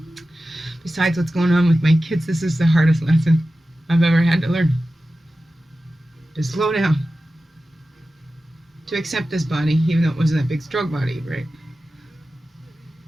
Besides what's going on with my kids, this is the hardest lesson I've ever had to learn. To slow down. To accept this body, even though it wasn't that big, strong body, right?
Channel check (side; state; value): both; normal; correlation 0.94